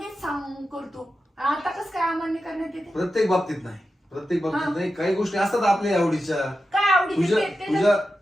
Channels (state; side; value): normal; both; correlation 0.91